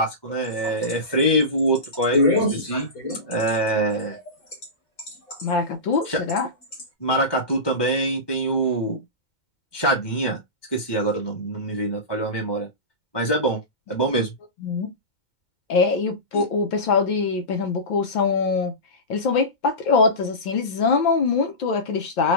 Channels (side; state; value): right; late; 2.1 ms